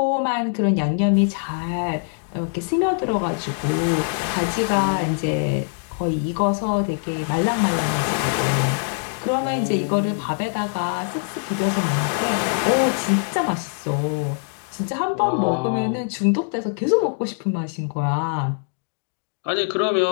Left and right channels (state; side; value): silent; right; digital silence